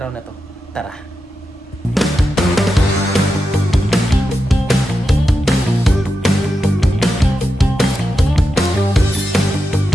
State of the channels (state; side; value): normal; both; correlation 0.89